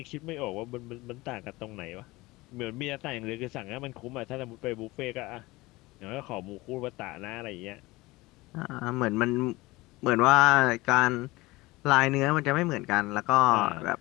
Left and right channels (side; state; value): right; quieter; 21.0 dB